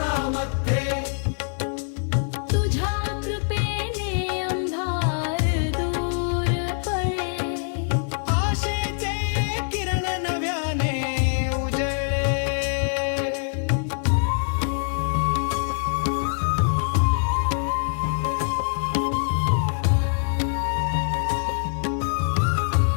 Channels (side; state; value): right; silent; digital silence